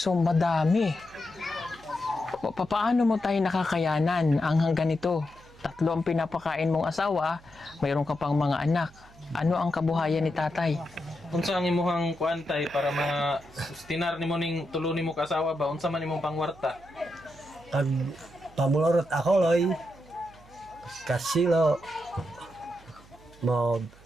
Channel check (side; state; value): right; noise; hum, 24 dB below the sound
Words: madami. Paano mo tayo nakakayanan ang ganito? 3 ang pinapakain mong asawa, mayroon ka pang mga anak. Ano ang kabuhayan ni tatay? Unsa ang imuhang kuantay para ma-sustinar nimo ning tulo nimo ka asawa ba? Unsa man imong pangwarta? Pag pamulorot ako loy, kasilo, mo